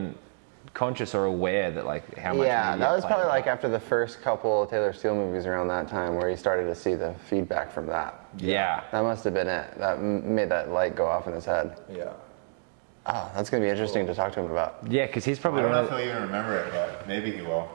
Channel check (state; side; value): silent; left; digital silence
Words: conscious or aware that like how much. Yeah, media that was played probably a like part. after the first couple Taylor Steele movies around that time where you started to see the feedback from that. Yeah. That must have been it. That made that light go off in his head. Yeah. Oh, that's going to be interesting to talk to him about. Yeah, because he's I probably don't one know of if he'll even remember it, but maybe he will.